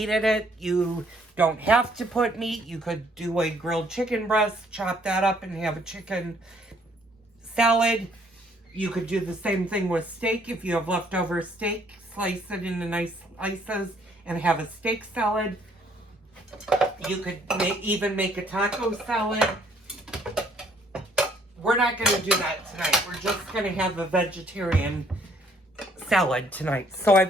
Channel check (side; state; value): both; normal; correlation 0.64